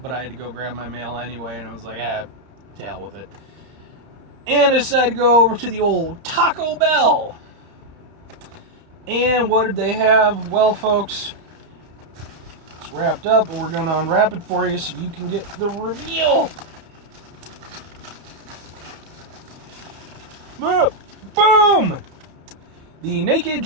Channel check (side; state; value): left; late; 32 ms